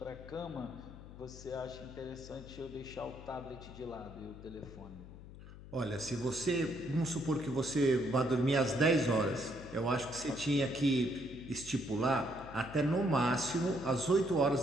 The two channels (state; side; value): noise; left; hum, 15 dB below the sound